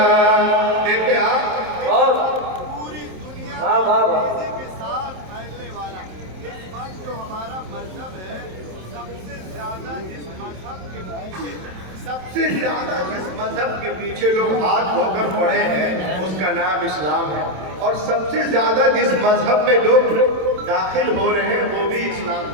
देखते आप और पूरी दुनिया वाह वाह वाह। तेजी के साथ फैलने वाला इस वक्त जो हमारा मजहब है, सबसे ज्यादा जिस मजहब के पीछे सबसे ज्यादा जिस मजहब के पीछे लोग हाथ धोकर पड़े हैं उसका नाम इस्लाम है, और सबसे ज्यादा जिस मजहब में लोग दाखिल हो रहे हैं वो भी इस्लाम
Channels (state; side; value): late; left; 27 ms